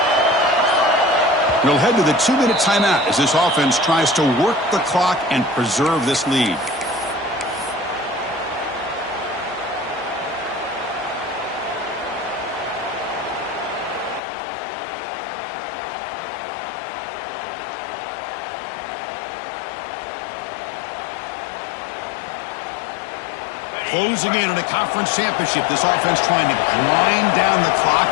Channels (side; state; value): right; drops out; at 14.2 s